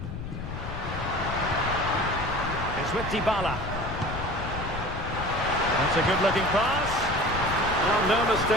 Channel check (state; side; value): noise; left; rumble, 7 dB below the sound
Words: It's with Dybala. That's a good-looking pass. Well, no